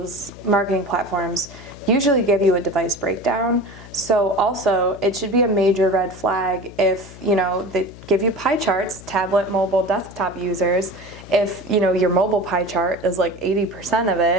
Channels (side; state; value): left; noise; hum, 17 dB below the sound